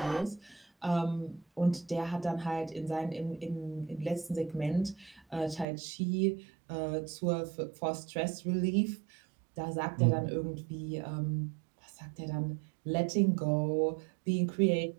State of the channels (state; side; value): drops out; left; at 5.7 s